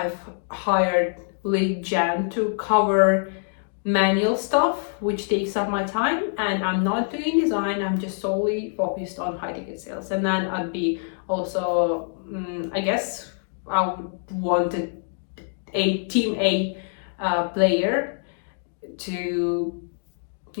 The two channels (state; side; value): silent; right; digital silence